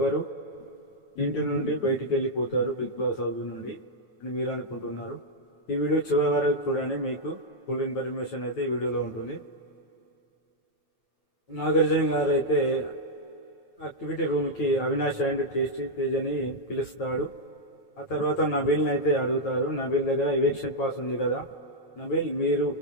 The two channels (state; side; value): late; right; 9.1 ms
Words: ఇంటి నుండి బయటికి వెళ్ళిపోతారు బిగ్ బాస్ హౌస్ నుండి అని మీరు అనుకుంటున్నారు. ఈ వీడియో చివరి వరకు చూడండి, మీకు ఫుల్ ఇన్ఫర్మేషన్ అయితే ఈ వీడియోలో ఉంటుంది. నాగార్జున గారు అయితే యాక్టివిటీ రూమ్కి అవినాష్ అండ్ టేస్టీ తేజ్ అని పిలుస్తాడు. ఆ తర్వాత నబీల్ని అయితే అడుగుతారు. నబీల్ దగ్గర ఎవిక్షన్ పాస్ ఉంది కదా, నబీల్ మీరు